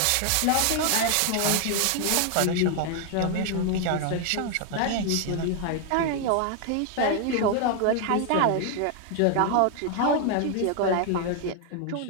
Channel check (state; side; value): different; both; correlation 0.00